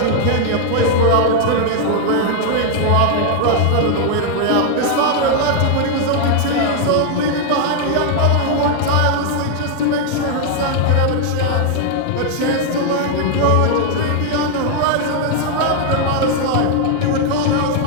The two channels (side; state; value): both; different; correlation 0.00